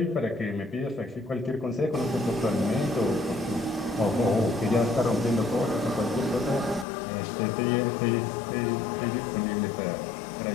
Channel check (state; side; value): drops out; right; at 6.9 s